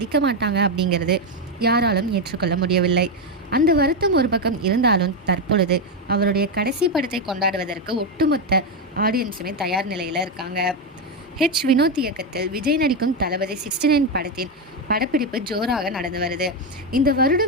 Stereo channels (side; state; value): both; normal; correlation 0.07